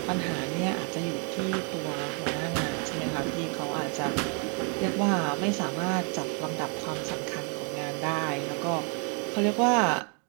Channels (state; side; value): quieter; left; 37.7 dB